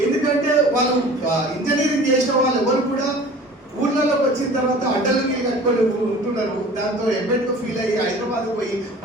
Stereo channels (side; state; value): both; normal; correlation 0.44